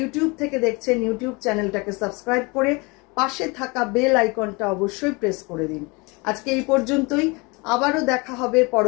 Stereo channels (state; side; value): quieter; right; 27.5 dB